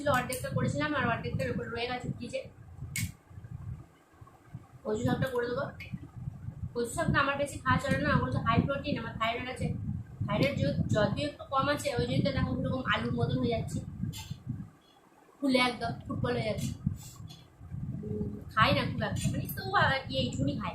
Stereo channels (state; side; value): identical; both; correlation 1.00